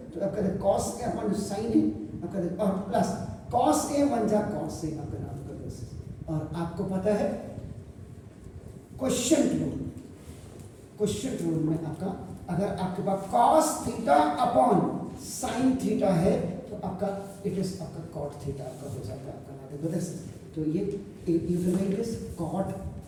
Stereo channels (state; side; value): identical; both; correlation 1.00